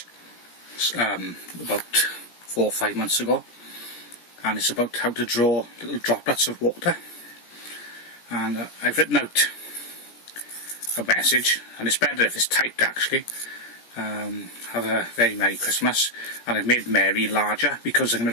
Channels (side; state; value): right; late; 17 ms